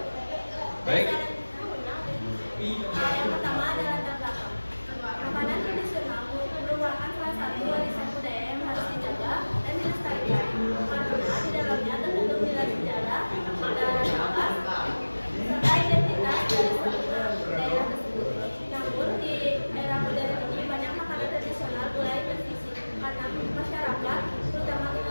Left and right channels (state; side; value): inverted; both; correlation -1.00